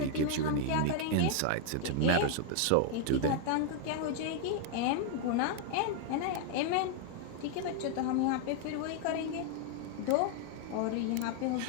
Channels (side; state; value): both; different; correlation 0.00